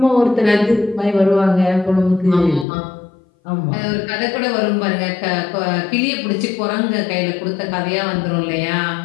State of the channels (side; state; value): right; drops out; at 2.7 s